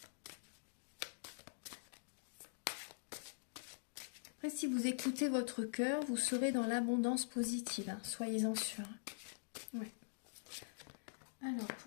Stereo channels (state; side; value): silent; right; digital silence